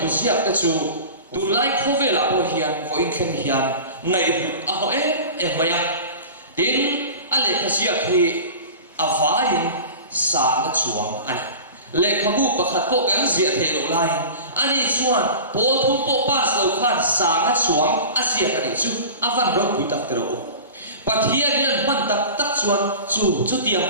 siak ta chu tunlai khovela po hian vo in khen hian ngai hut a ho e maya tin a lekha siak hi avain sa na chuang ani lekhabu pakhat po kan zia thelo lai ani chuan pol thu po pas lo khan sa na chuang asia ka ni chu avan ro pui tak tero pathian hian man tak chuan chu tiang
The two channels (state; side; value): inverted; both; correlation -0.35